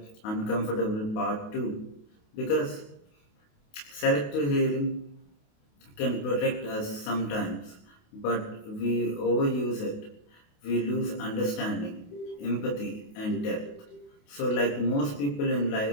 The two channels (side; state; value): right; late; 28 ms